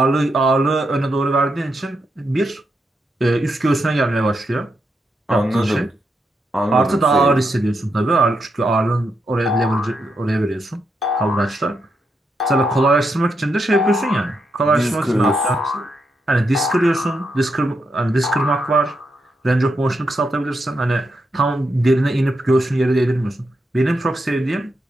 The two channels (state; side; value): normal; both; correlation 0.83